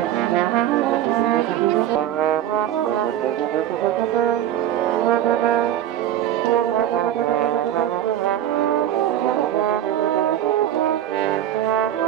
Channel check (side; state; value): left; quieter; 11.8 dB